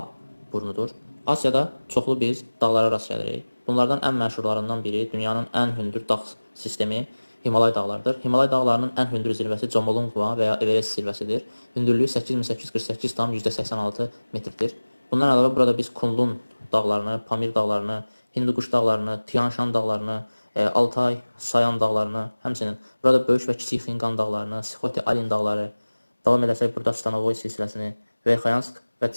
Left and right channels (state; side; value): inverted; both; correlation -1.00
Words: burnudur. Asiyada çoxlu biz dağlara rast gəlirik. Bunlardan ən məşhurlarından biri dünyanın ən hündür dağ sistemi Himalay dağlarıdır. Himalay dağlarının ən hündür zirvəsi Jomolungma və ya Everest zirvəsidir. Hündürlüyü 8848,86 metrdir. Bundan əlavə burada biz Kunlun dağlarını, Pamir dağlarını, Hindukuş dağlarını, Tian Shan dağlarını, Altay, Sayan dağlarını, həmçinin burada böyük və kiçik Xinqan dağlarını, Sixote-Alin dağları, davam edəsək burada Stanovoy silsiləsini, Verxayansk və